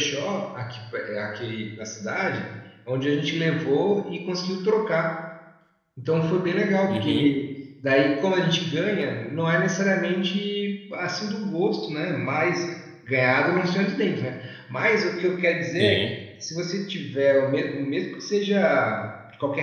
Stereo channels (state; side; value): identical; both; correlation 1.00